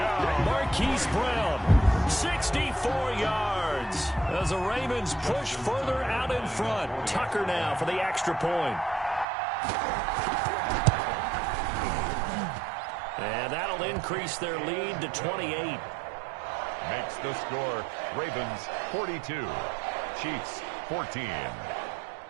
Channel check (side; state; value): left; drops out; at 9.2 s